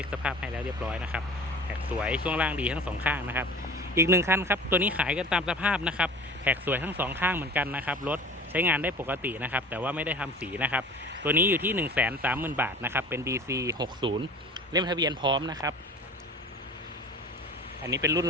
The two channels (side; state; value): both; normal; correlation 0.41